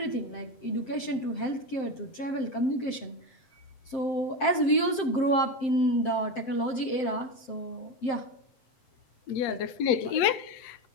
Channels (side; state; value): right; late; 7.7 ms